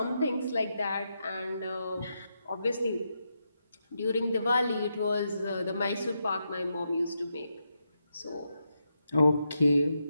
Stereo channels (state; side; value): inverted; both; correlation -0.84